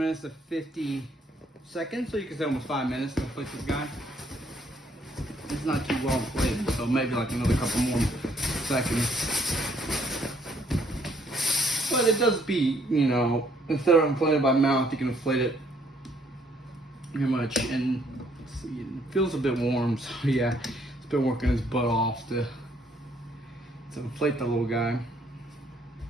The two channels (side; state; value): both; normal; correlation 0.67